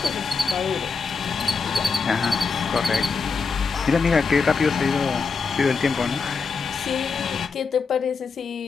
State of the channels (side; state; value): right; quieter; 5.0 dB